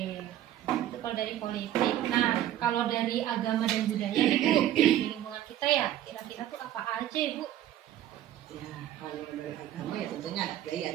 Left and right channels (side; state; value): left; quieter; 12.3 dB